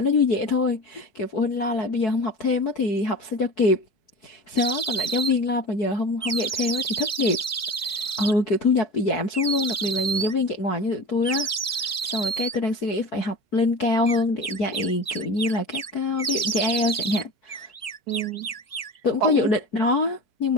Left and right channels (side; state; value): both; normal; correlation 0.32